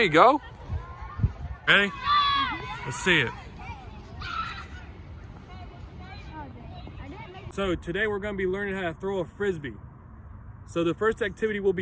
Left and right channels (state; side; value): identical; both; correlation 1.00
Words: go. Ready? Let's see it. So today we're going to be learning how to throw a Frisbee. So the first activity we'll